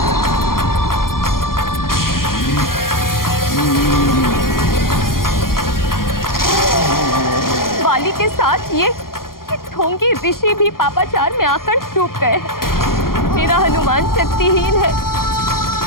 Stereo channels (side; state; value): right; late; 0.91 ms